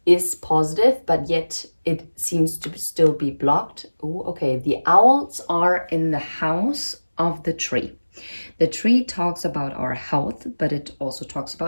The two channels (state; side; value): inverted; both; correlation -1.00